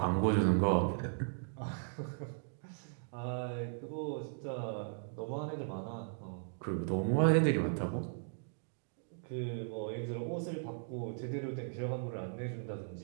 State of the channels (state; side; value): silent; left; digital silence